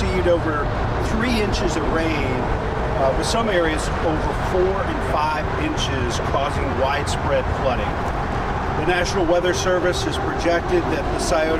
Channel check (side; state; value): both; identical; correlation 1.00